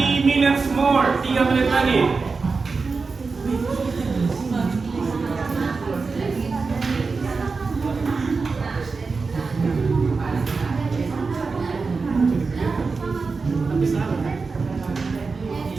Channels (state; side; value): quieter; left; 4.4 dB